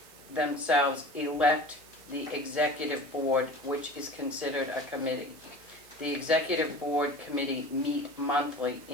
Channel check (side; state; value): right; noise; hiss, 23 dB below the sound